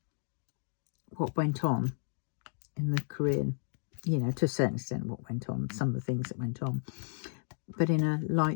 what went on in the Korean, you know, to a certain extent what went on, some of the things that went on, but in a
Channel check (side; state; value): right; silent; digital silence